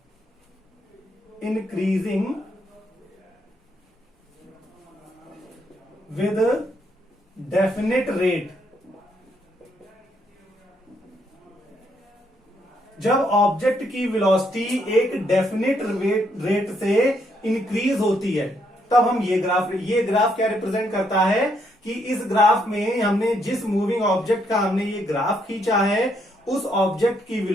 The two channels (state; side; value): normal; both; correlation 0.74